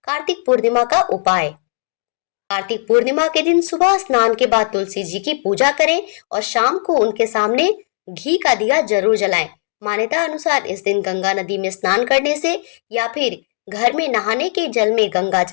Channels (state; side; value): silent; right; digital silence